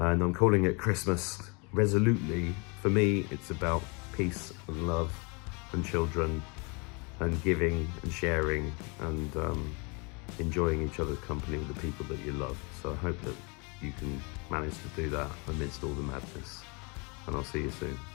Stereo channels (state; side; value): quieter; right; 31.3 dB